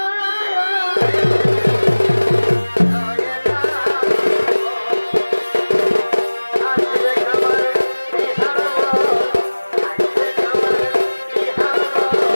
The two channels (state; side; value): inverted; both; correlation -1.00